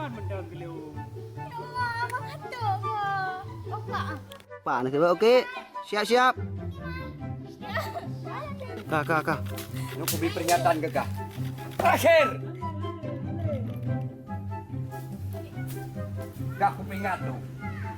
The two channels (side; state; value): both; identical; correlation 1.00